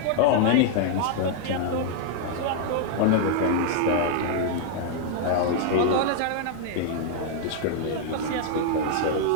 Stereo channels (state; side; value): different; both; correlation -0.01